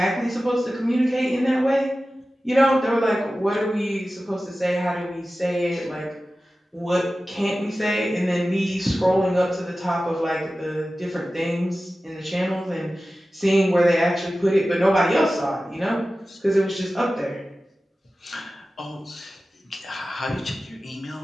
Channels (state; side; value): normal; both; correlation 0.95